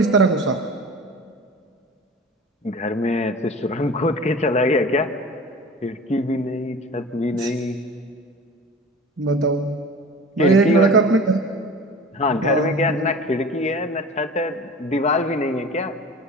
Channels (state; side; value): normal; both; correlation 0.38